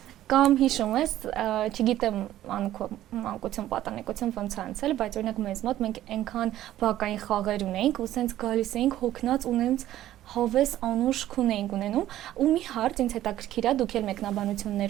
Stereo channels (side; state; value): left; quieter; 13.4 dB